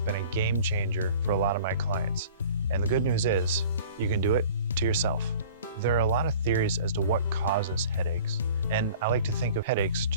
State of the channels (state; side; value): inverted; both; correlation -0.46